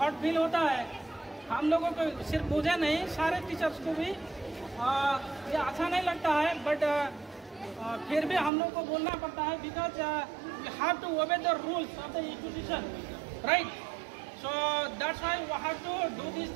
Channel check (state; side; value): drops out; left; at 8.5 s